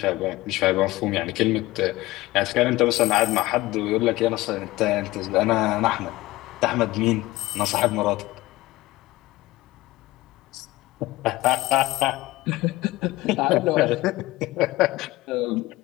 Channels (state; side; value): quieter; right; 18.9 dB